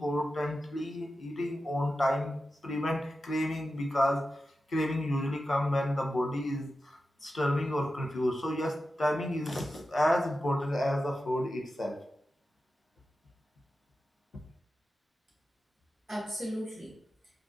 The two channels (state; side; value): normal; both; correlation 0.92